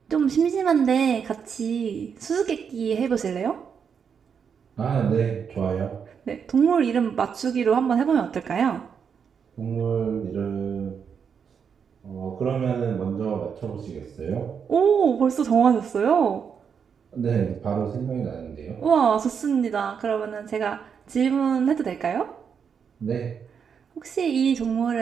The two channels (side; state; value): left; quieter; 6.9 dB